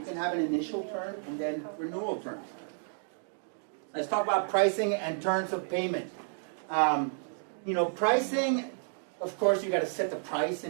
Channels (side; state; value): left; silent; digital silence